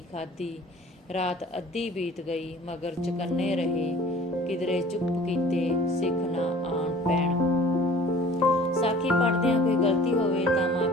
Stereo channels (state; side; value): normal; both; correlation 0.48